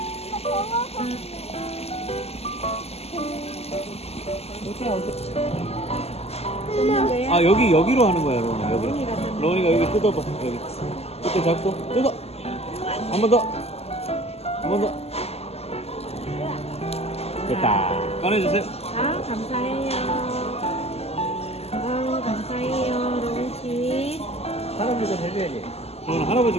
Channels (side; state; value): right; late; 0.29 ms